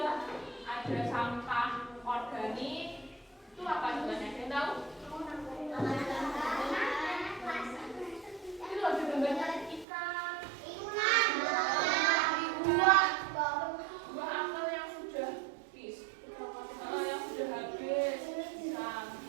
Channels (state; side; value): drops out; left; at 9.9 s